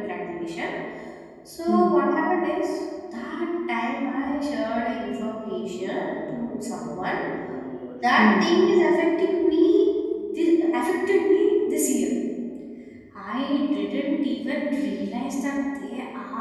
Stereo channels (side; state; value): both; identical; correlation 1.00